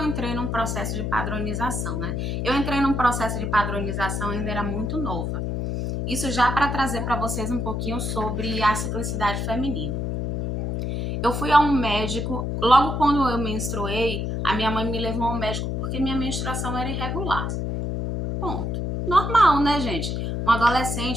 entrei num processo de padronização, né? Eu entrei num processo de padronização, ainda era muito nova. Isso já para trazer para vocês um pouquinho sobre a ciclicidade feminina. Eu fui a um médico, logo quando eu menstruei, a minha mãe me levou a um médico porque minha menstruação era irregular. Ponto. Normal, né, gente? Uma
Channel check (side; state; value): left; noise; hum, 2 dB below the sound